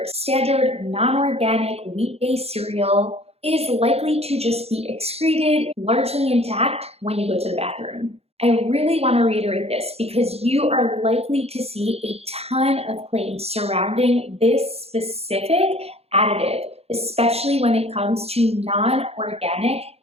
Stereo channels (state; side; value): late; left; 0.29 ms